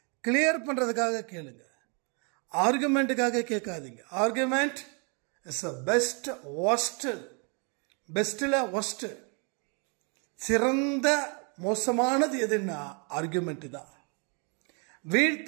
கிளியர் பண்ணுறதுக்காக கேளுங்க, ஆர்குமெண்ட்டுக்காக கேட்காதீங்க. Argument is a best worst, பெஸ்ட்டில் ஒஸ்ட், சிறந்த மோசமானது எதுன்னா ஆர்குமெண்ட் தான்.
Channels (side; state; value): left; quieter; 35.9 dB